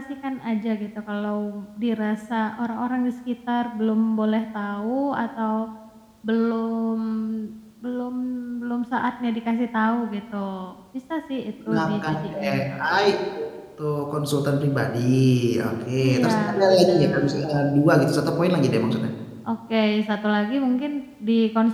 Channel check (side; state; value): both; identical; correlation 1.00